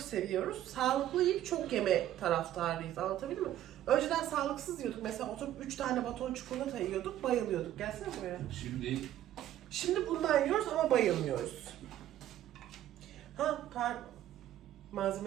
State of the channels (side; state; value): left; quieter; 12.5 dB